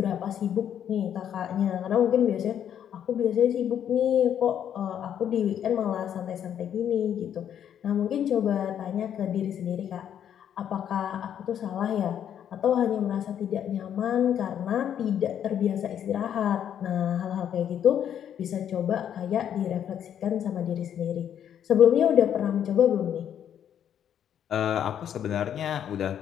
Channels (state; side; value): quieter; right; 9.5 dB